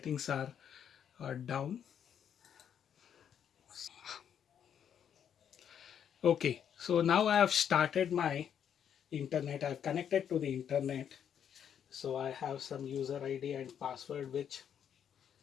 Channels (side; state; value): right; quieter; 8.7 dB